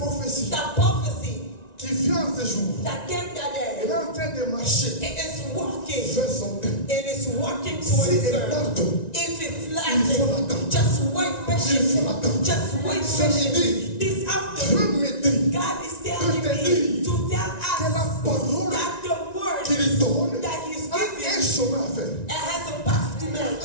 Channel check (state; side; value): late; right; 1.9 ms